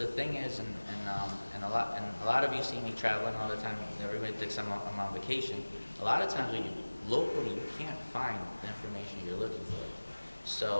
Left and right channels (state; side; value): inverted; both; correlation -1.00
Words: thing is, and a lot of you see me traveling all the time. Everybody thinks I'm on vacation. A lot of times when you locally, you can't find the information you're looking for.